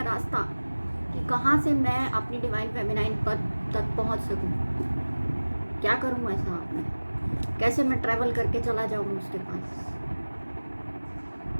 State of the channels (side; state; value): both; inverted; correlation -1.00